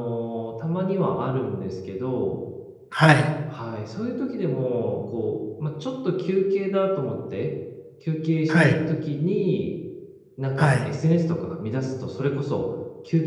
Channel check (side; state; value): both; identical; correlation 1.00